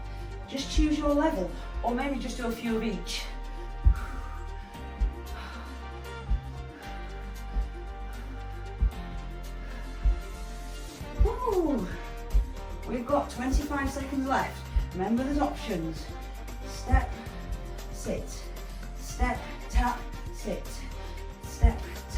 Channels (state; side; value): identical; both; correlation 1.00